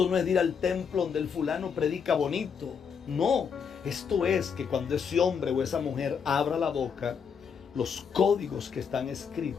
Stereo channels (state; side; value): quieter; right; 6.6 dB